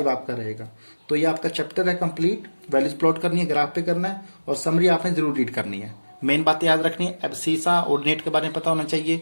आपका रहेगा। तो ये आपका चैप्टर है कंप्लीट, वैल्यूज प्लॉट करनी है, ग्राफ पे करना है, और समरी आपने जरूर रीड करनी है। मेन बातें याद रखनी है, एब्सीसा ऑर्डिनेट के बारे में पता होना चाहिए,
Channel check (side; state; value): both; inverted; correlation -1.00